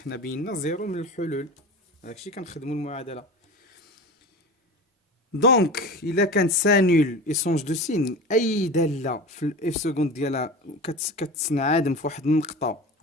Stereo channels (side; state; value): both; normal; correlation 0.32